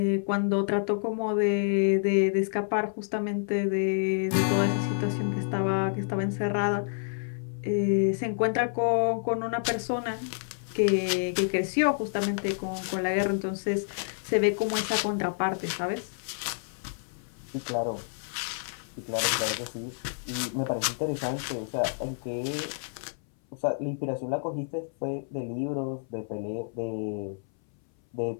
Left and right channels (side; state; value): right; silent; 59 dB below the other